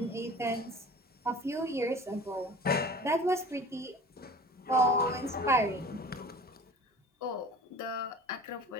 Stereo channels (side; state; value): both; normal; correlation 0.41